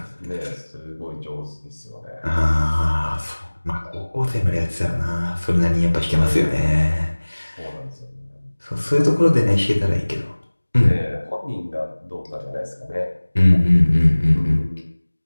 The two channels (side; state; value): both; inverted; correlation -1.00